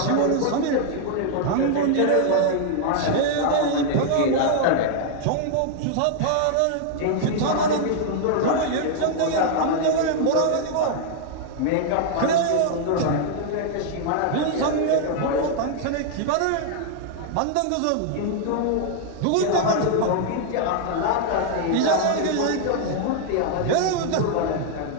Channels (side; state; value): both; different; correlation 0.00